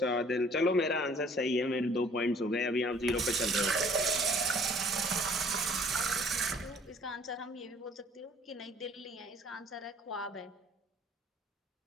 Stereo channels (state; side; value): normal; both; correlation 0.55